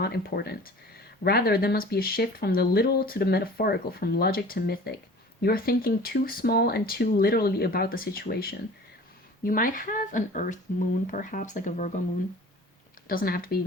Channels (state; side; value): normal; both; correlation 0.43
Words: important. Rather, there must be a shift from the literal to the metaphorical, from logic to mythic. You are thinking too small and too literally about the situation. You might have an Earth moon, perhaps, like a Virgo moon. Doesn't have to